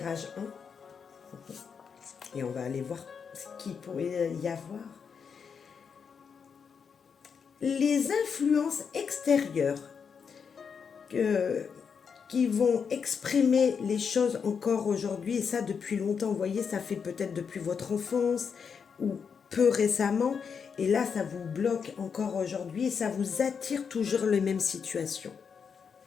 1. Et on va aller voir ce qu'il pourrait y avoir. Les influences extérieures qui vont exprimer les choses encore aujourd'hui, et ça depuis longtemps, vous voyez, ça fait peut-être depuis votre enfance ou peu récemment, et là ça vous bloque encore aujourd'hui et ça vous attire toujours les mêmes situations.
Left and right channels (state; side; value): quieter; right; 6.4 dB